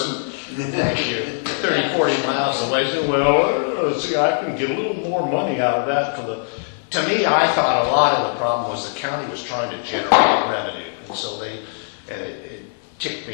thank you, 30, 40 miles away. See, I can get a little more money out of that. To me, I thought a lot of the problem was the county was trying to generate revenue. And so it ticked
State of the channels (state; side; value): silent; right; digital silence